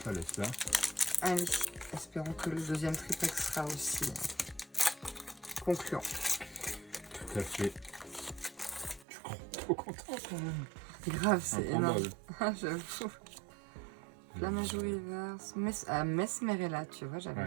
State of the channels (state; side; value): drops out; left; at 9.1 s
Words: Ça laisse là. Allez, espérons que le deuxième tripack sera aussi concluant. Tout à fait. Je suis trop content quand même. C'est grave, c'est énorme. Improbable. J'avoue. Flammageau reverse. Mesmerella, tu vois, j'avais